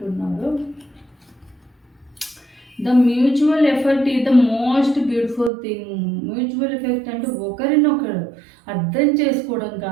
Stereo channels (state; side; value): drops out; left; at 5.5 s